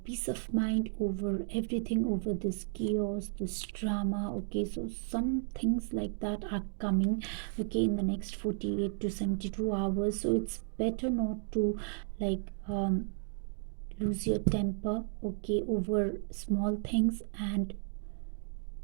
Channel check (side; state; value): left; silent; digital silence